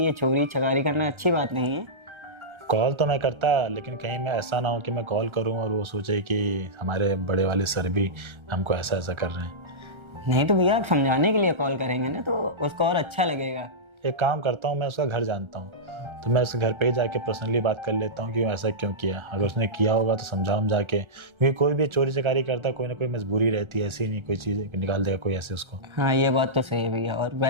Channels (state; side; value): late; left; 1.3 ms